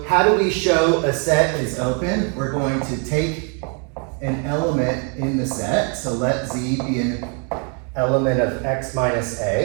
how do we show a set is open? We're going to take an element in the set, so let Z be an element of X minus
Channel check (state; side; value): quieter; left; 38.4 dB